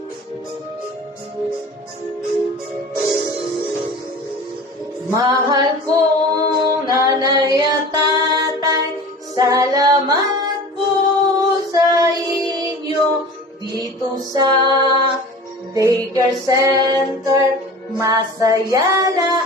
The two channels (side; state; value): both; normal; correlation 0.39